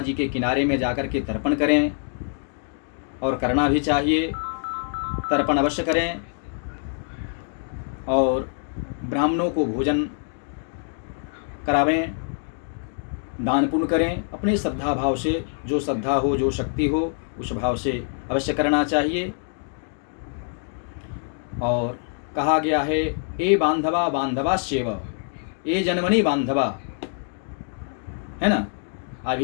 के किनारे में जाकर के तर्पण करें, और करना भी चाहिए। तर्पण अवश्य करें और ब्राह्मणों को भोजन करावें, दान पुण्य करें। अपने श्रद्धा भाव से, जो श्रद्धा हो, जो शक्ति हो, उस भाव से अवश्य करना चाहिए। और कहा गया है, ए बांधवा बांधवाश्चैव, ए जन्मनि बांधवा, है ना।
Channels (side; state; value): right; silent; 62 dB below the other